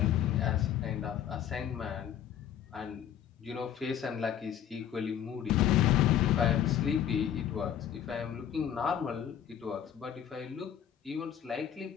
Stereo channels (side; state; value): right; quieter; 9.8 dB